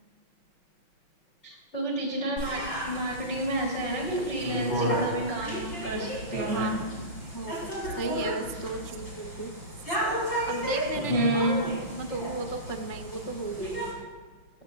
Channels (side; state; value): right; late; 5.9 ms